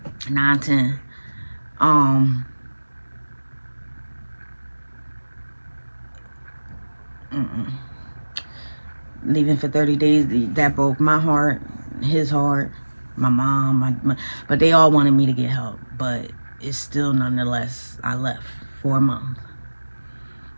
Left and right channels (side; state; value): both; inverted; correlation -1.00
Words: 9, 10. Leaving for 30 days, that broke my heart, his heart, my mom, but they all wanted me to get help. But it's still, nonetheless, I left for a month.